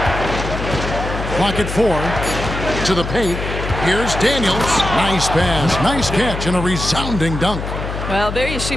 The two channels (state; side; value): noise; left; hum, 5 dB below the sound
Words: Clock at 4. To the paint. Here's Daniels. Nice pass, nice catch, and a resounding dunk. Well, there you see